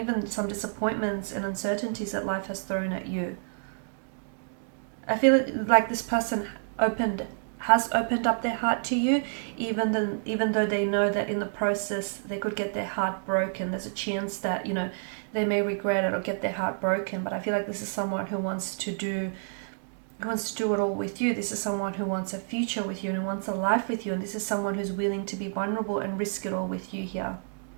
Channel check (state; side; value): silent; left; digital silence